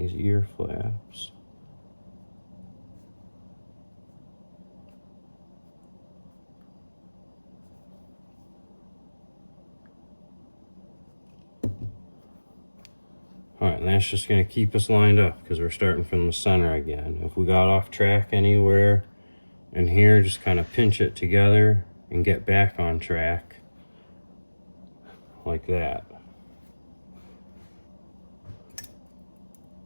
ear flaps. Alright, and that's just going to keep us lined up because we're starting from the center again. If we got off track anywhere in here, just kind of pinch it together and get back on track like that.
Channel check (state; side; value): inverted; both; correlation -1.00